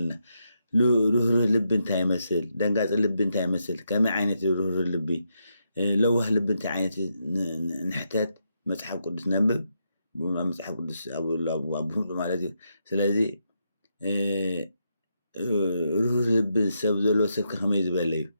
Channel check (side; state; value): both; inverted; correlation -0.82